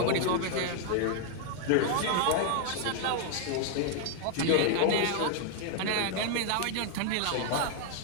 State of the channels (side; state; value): both; different; correlation 0.00